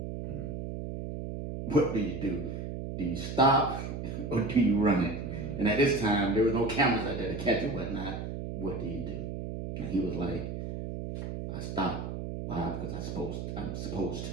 Mm. What do you do? Do you stop or do you run it? And at this time, there was no cameras out there to catch it, whatnot. What do you do? And he was like, I stopped. Why? Because I'm supposed to.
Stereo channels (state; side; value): noise; right; hum, 5 dB below the sound